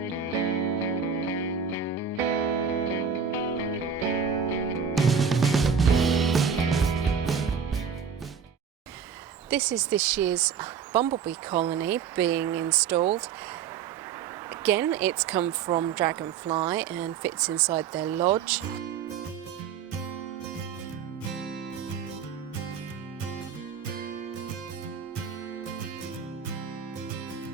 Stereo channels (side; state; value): left; quieter; 6.9 dB